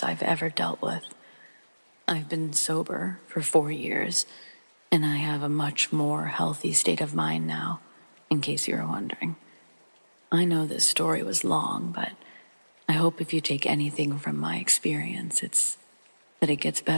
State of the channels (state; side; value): inverted; both; correlation -1.00